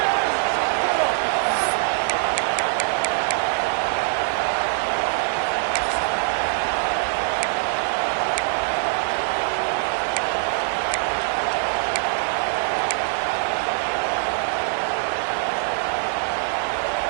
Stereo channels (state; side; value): silent; left; digital silence